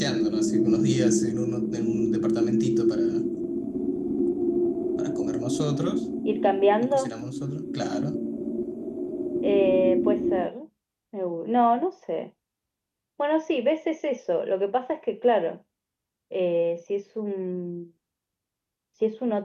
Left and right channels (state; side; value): identical; both; correlation 1.00